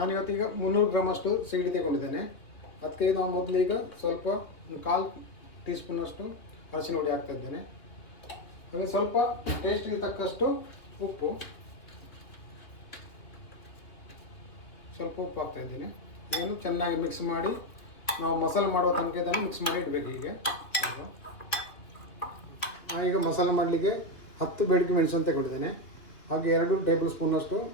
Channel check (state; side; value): late; right; 3.1 ms